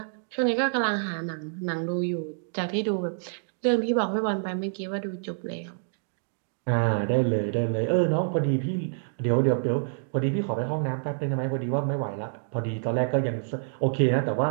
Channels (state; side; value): silent; left; digital silence